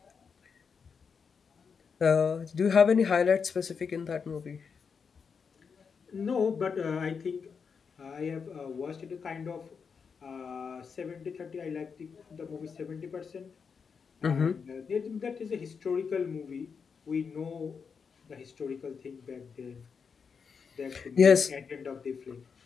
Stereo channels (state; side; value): quieter; right; 5.9 dB